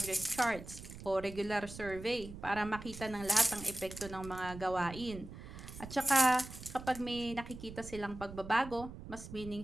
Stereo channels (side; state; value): right; noise; rumble, 13 dB below the sound